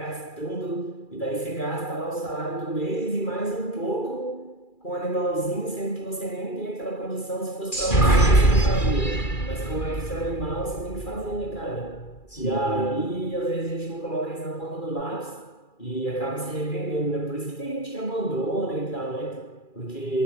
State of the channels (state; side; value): late; right; 2.4 ms